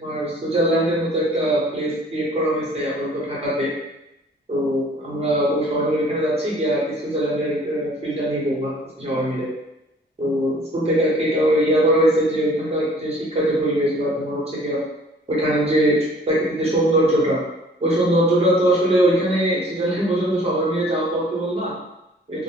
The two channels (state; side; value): normal; both; correlation 0.54